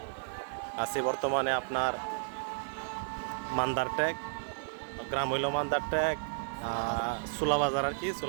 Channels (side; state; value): left; silent; digital silence